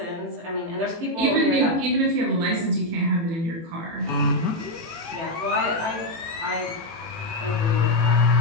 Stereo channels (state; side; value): late; left; 18 ms